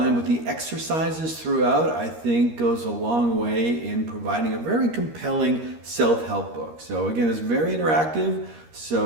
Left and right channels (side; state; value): left; late; 13 ms